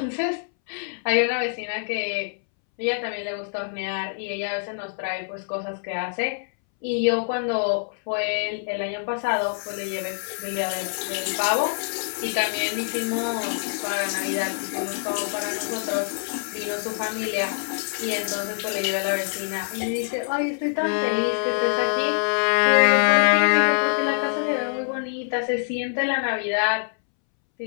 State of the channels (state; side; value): silent; right; 62 dB below the other